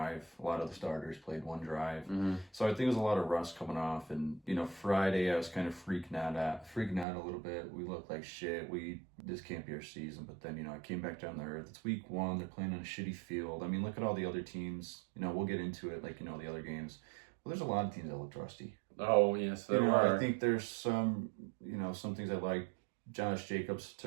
A lot of the starters played 1 drive. Mm-hmm. So I think it was a lot of rust coming off. And, Friday I was kind of freaking out a little bit. We looked like shit. This can't be our season. But then, I came back down to earth. It's week 1. They're playing on a shitty field. Look at all the other teams. We'll get into it like, the other games. Well, there's a lot of teams that looked rusty. Oh, yes, there are. I think there's some, some things I like. Josh Jacobs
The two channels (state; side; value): drops out; left; at 7.1 s